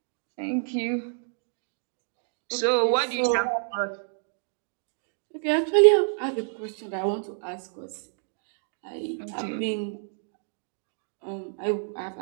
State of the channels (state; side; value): silent; left; digital silence